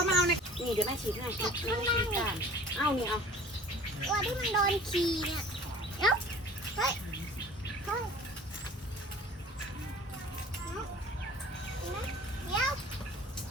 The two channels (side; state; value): both; normal; correlation 0.46